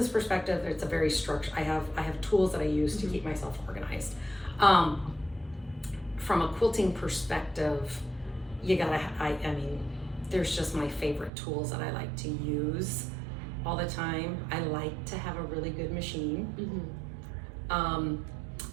perspective, it's a very structured. I have tools that I use to keep myself organized. From a quilting perspective, I mean, there's just my favorite tools that I like to use all the time. I like to have a really good machine. I'm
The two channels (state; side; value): drops out; left; at 11.3 s